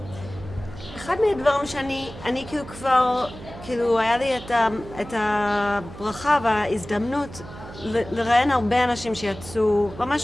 אחד מהדברים שאני כאילו כבר, כאילו היה לי את הברכה וההזדמנות לראיין הרבה אנשים שיצאו,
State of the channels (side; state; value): right; noise; hum, 14 dB below the sound